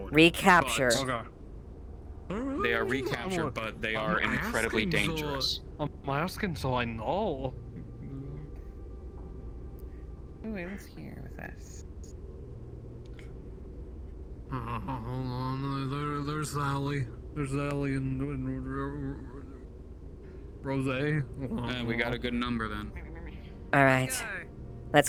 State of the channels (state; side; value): identical; both; correlation 1.00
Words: Recapture. They are recaptured, but they are incredibly dangerous. I'm asking so I know. Who is here with us? Hold on, there's Sally. There's Sally and Rose. We got a good number then. All right. Let's